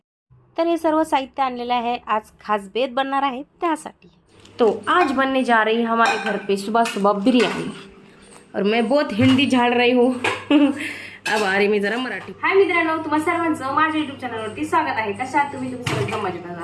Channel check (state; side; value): identical; both; correlation 1.00